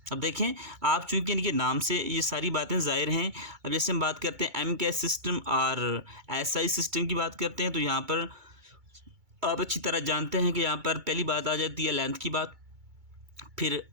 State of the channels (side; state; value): left; late; 2.3 ms